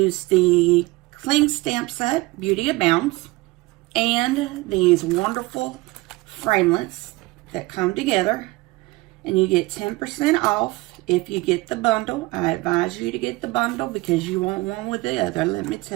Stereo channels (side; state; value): left; quieter; 21.6 dB